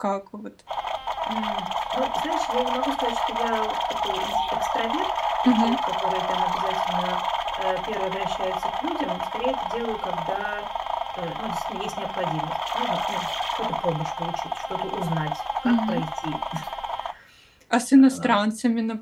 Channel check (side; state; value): both; identical; correlation 1.00